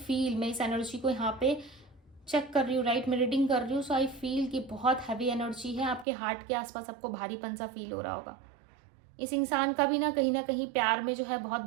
मैं इस एनर्जी को यहाँ पे चेक कर रही हूँ, राइट, मैं रीडिंग कर रही हूँ, सो आई फील कि बहुत हैवी एनर्जी है आपके हार्ट के आसपास, आपको भारीपन सा फील हो रहा होगा। इस इंसान का भी ना कहीं प्यार में जो है बहुत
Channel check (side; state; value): left; drops out; at 6.1 s